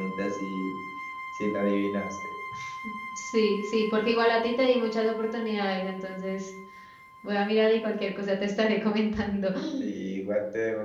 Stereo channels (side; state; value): both; identical; correlation 1.00